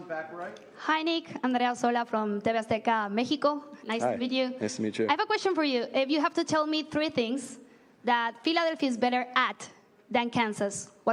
back right. Hi, Nick. Andrea Sola from TV Azteca, Mexico. Nice Hi. to meet you. Nice to meet you. I have a question for you. If you have to tell me 3 things that Philadelphia is better at than Kansas,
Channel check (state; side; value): identical; both; correlation 1.00